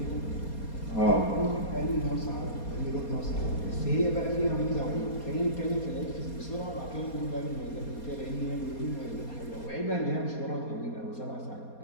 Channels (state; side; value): late; right; 4.2 ms